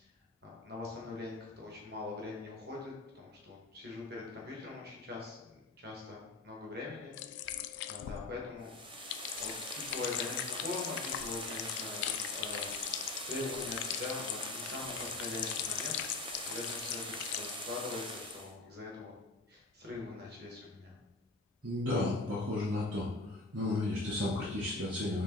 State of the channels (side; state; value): right; quieter; 3.2 dB